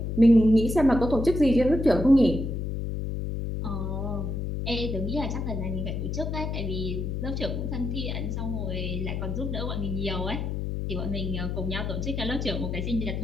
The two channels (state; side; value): noise; left; hum, 3 dB below the sound